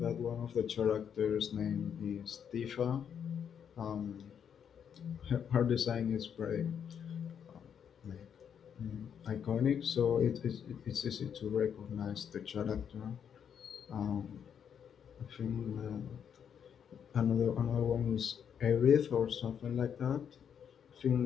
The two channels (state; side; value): quieter; right; 8.0 dB